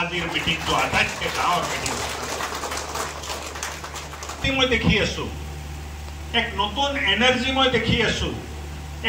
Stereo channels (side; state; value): both; identical; correlation 1.00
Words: মিটিংটো আটাইতকৈ ডাঙৰ মিটিং মই দেখি আছো এক নতুন এনাৰ্জি মই দেখি আছো